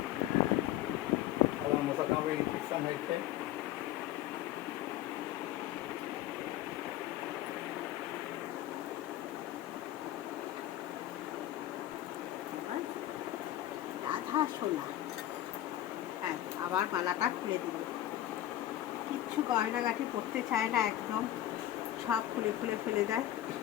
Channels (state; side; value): quieter; right; 13.3 dB